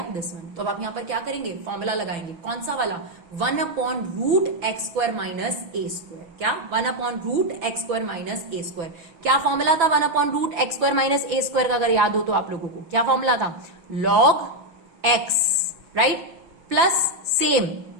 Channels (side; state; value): left; late; 6.0 ms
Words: दिस वन। तो अब आप यहां पर क्या करेंगे, फॉर्मूला लगाएंगे, कौन सा वाला, 1 upon root x square minus ए स्क्वायर। क्या, 1 upon root x square minus ए स्क्वायर। क्या फॉर्मूला था 1 upon root x square minus ए स्क्वायर का, अगर याद हो तो आप लोगों को क्या फॉर्मूला था, log X, right, plus same